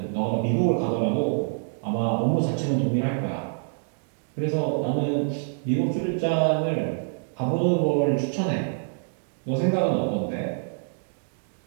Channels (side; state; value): left; silent; digital silence